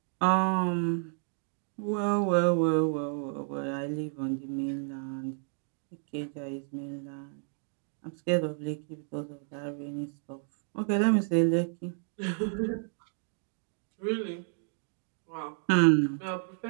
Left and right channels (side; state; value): left; silent; 57 dB below the other